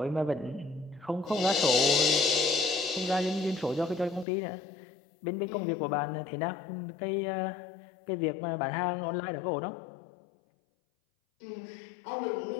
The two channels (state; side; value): drops out; right; at 4.2 s